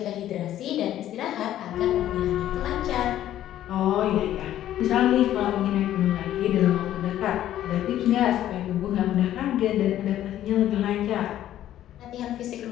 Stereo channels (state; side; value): quieter; right; 12.4 dB